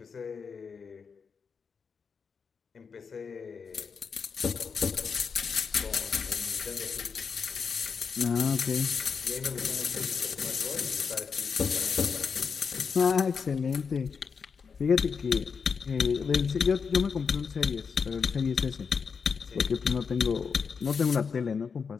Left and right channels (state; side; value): quieter; right; 5.8 dB